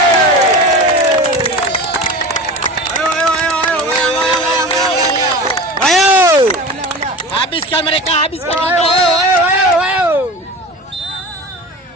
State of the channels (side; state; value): both; normal; correlation 0.32